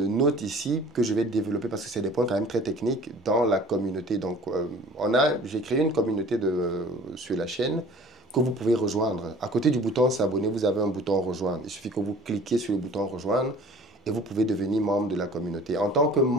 notes ici que je vais développer parce que c'est des points quand même très techniques dans la communauté. Donc, j'ai créé une communauté sur la chaîne que vous pouvez rejoindre. À côté du bouton s'abonner, vous avez un bouton rejoindre. Il suffit que vous cliquez sur le bouton rejoindre et vous pouvez devenir membre de la communauté. En tant que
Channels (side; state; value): both; normal; correlation 0.47